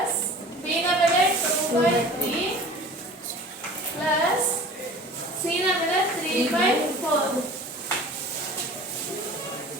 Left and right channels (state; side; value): normal; both; correlation 0.42